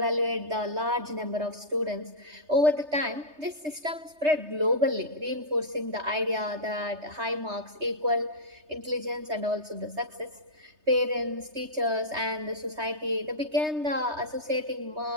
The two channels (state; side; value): late; left; 3.3 ms